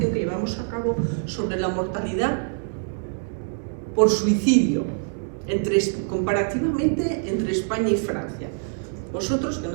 que llevamos a cabo sobre la mortalidad por suicidio comparativamente entre España y Francia. Vosotros, que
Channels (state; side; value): silent; left; digital silence